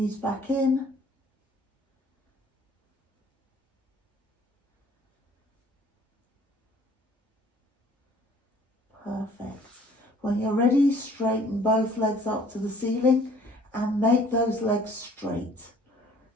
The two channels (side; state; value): both; normal; correlation 0.55